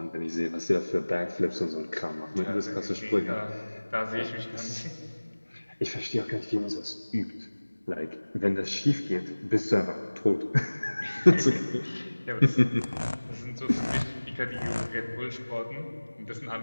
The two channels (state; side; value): inverted; both; correlation -1.00